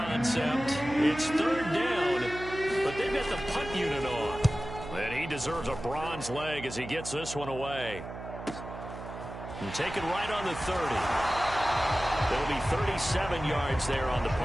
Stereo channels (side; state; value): right; noise; hum, 11 dB below the sound